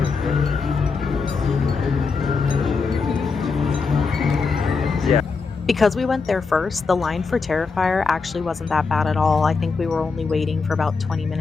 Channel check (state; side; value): quieter; right; 4.7 dB